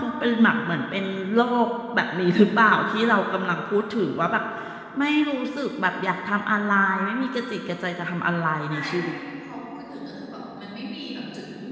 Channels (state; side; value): identical; both; correlation 1.00